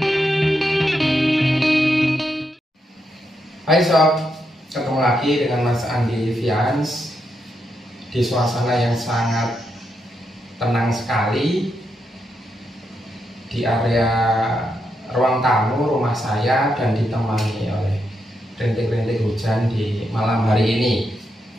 sob, ketemu lagi dengan Mas Andi Vians di suasana yang sangat tenang sekali di area ruang tamu rumah saya dan ditemani oleh rintik-rintik hujan di malam hari ini.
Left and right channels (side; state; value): both; normal; correlation 0.82